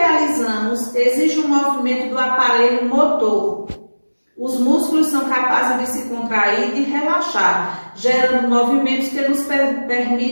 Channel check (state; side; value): inverted; both; correlation -1.00